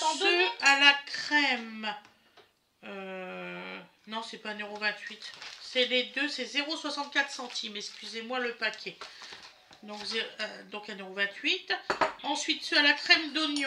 donner. ceux à la crème. Non, c'est pas 1,28 €. C'est les deux, c'est 0,64 centimes. Excusez-moi le paquet. Donc 1,28 €. Ensuite, ceux à la crème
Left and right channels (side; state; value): both; identical; correlation 1.00